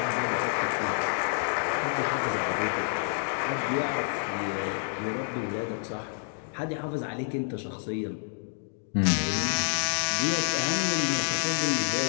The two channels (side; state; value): right; silent; digital silence